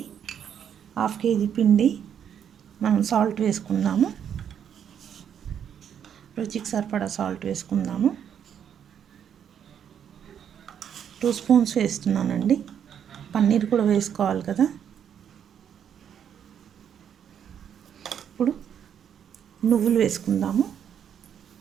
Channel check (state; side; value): quieter; left; 8.7 dB